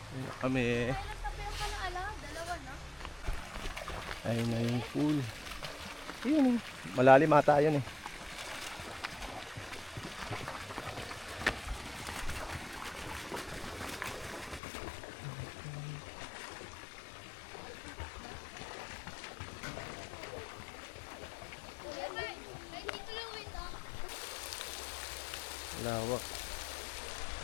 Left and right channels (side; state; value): right; drops out; at 14.6 s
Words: Ayun kami. Ayun na yung pool. Ayun eh. Malalim ata yun eh. Lawak.